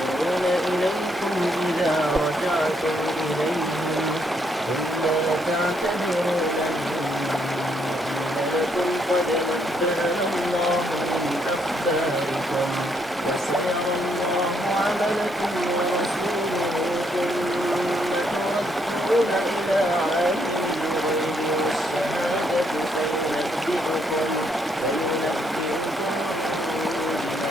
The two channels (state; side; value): normal; both; correlation 0.73